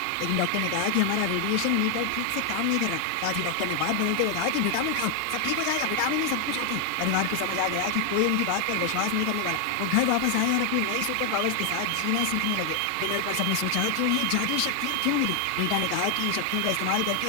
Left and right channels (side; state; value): both; different; correlation 0.00